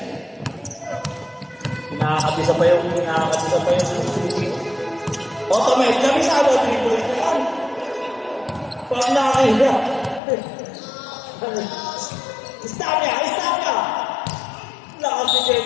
Nakakatisa pa yung automate. Kabisado. Triple ito yan. Pag nakahiga. Stop niya. Stop niya. Lakas si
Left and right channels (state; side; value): drops out; right; at 10.2 s